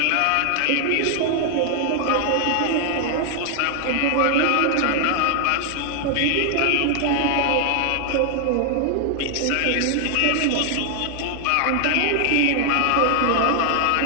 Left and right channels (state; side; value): different; both; correlation 0.00